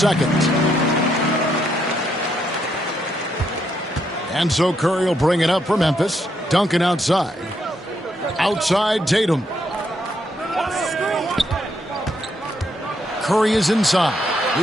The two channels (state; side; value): normal; both; correlation 0.76